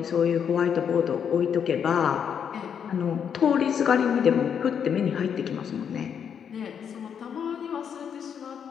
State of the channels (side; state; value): right; quieter; 7.7 dB